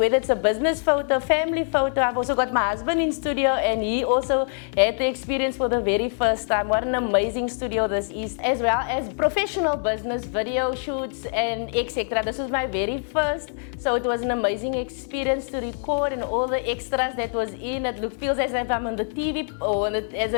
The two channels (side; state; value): right; silent; 62 dB below the other